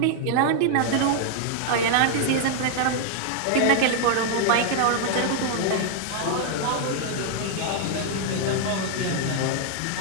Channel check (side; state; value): both; different; correlation 0.00